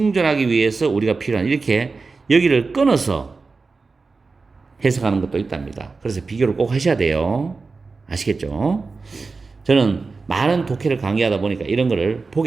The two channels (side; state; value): left; quieter; 4.2 dB